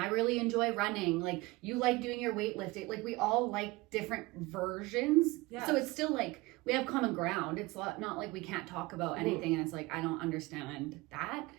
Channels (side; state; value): left; quieter; 22.1 dB